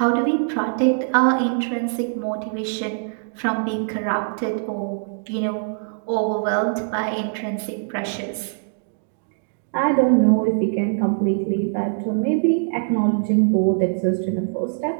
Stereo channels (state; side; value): silent; left; digital silence